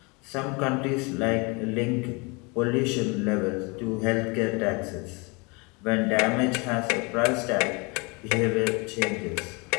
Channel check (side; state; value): right; quieter; 29.0 dB